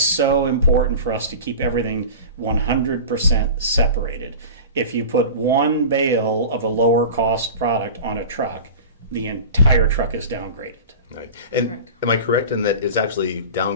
important for us to keep everything 100% separated. If you put one bale of a lower cost product on a truck, the entire truck is downgraded. Right. And correct. Am I correct in that it's actually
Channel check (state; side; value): inverted; both; correlation -0.34